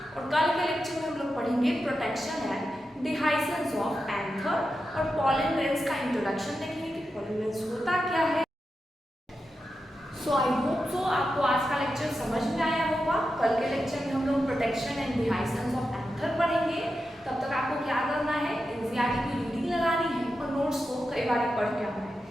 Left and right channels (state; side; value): normal; both; correlation 0.89